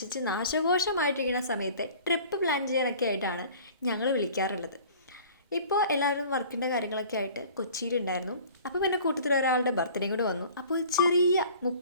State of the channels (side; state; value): both; inverted; correlation -0.47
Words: നാശകോശമായിട്ടിരിക്കുന്ന സമയത്ത് ട്രിപ്പ് പ്ലാൻ ചെയ്യാനൊക്കെ ആയിട്ടാണ് ഞങ്ങൾ വിളിക്കാറുള്ളത്. ഇപ്പോൾ എല്ലാവരും വർക്കിൻ്റെ കാര്യങ്ങളൊക്കെ ആയിട്ട് കൊച്ചിയിലുണ്ടായിരുന്നു. അപ്പോൾ പിന്നെ കൂട്ടത്തിൽ ഒരാളുടെ ബർത്ത്ഡേ കൂടെ വന്നു. അപ്പോൾ ഒരു ചെറിയ